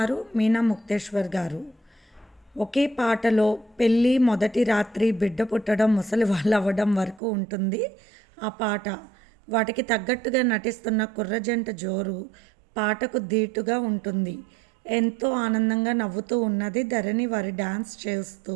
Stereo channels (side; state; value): left; drops out; at 7.2 s